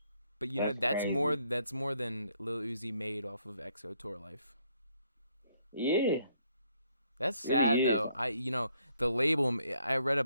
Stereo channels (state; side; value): inverted; both; correlation -0.70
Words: But that's more crazy. than Lil Uzi made off of EXO Tour Life. Yeah, That's really sad is. though. The label. I read